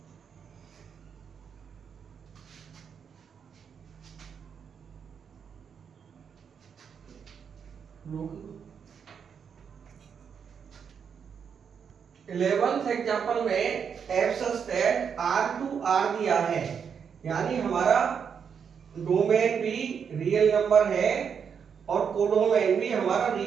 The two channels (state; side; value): quieter; left; 7.0 dB